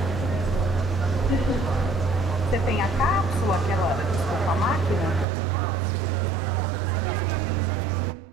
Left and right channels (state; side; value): drops out; left; at 5.2 s